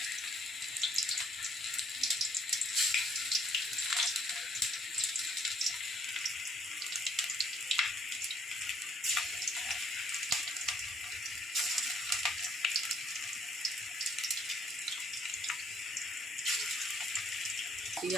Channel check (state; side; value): normal; both; correlation 0.65